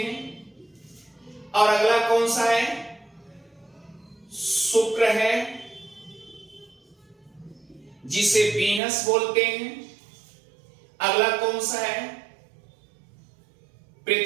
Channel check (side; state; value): left; drops out; at 8.8 s